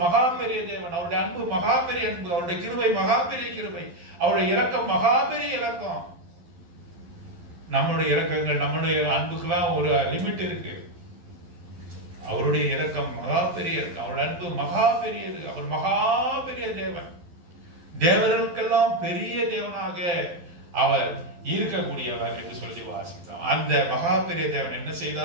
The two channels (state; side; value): late; left; 11 ms